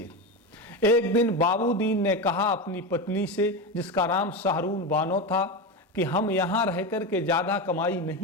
एक दिन बाबूदीन ने कहा अपनी पत्नी से, जिसका नाम शाहरून बानो था, कि हम यहाँ रह कर के ज़्यादा कमाई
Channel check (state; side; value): normal; both; correlation 0.18